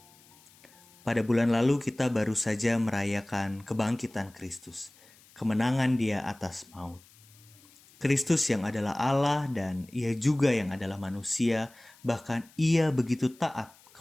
Pada bulan lalu kita baru saja merayakan kebangkitan Kristus, kemenangan Dia atas maut. Kristus yang adalah Allah dan Ia juga yang adalah manusia, bahkan Ia begitu taat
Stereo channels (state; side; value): noise; left; hiss, 27 dB below the sound